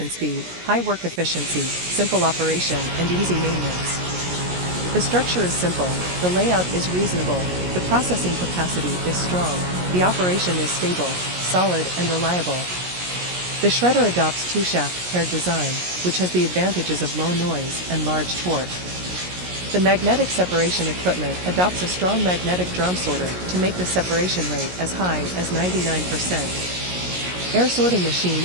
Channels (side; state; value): left; late; 17 ms